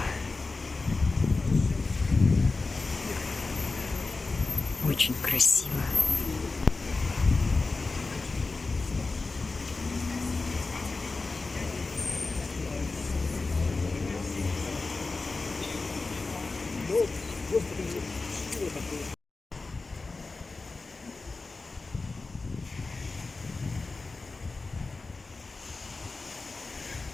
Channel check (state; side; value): quieter; right; 3.7 dB